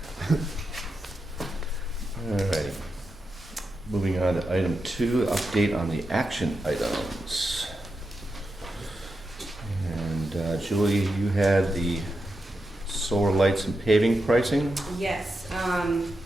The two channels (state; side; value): normal; both; correlation 0.88